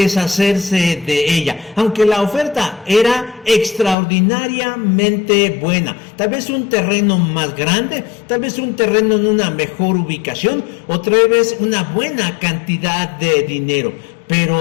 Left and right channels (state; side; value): drops out; right; at 4.0 s